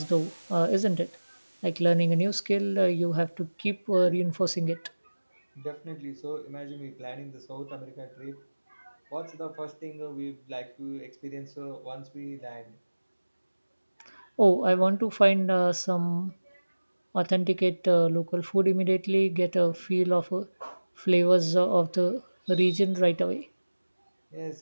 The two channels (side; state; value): both; inverted; correlation -1.00